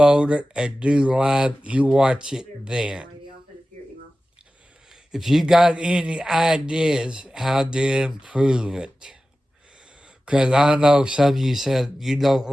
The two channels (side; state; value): both; normal; correlation 0.95